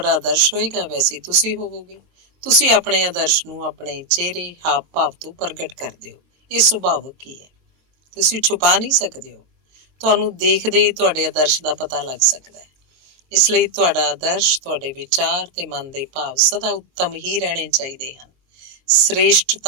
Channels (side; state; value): left; late; 22 ms